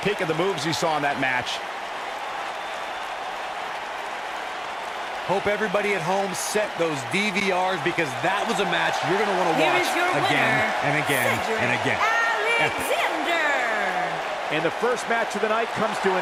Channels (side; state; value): both; identical; correlation 1.00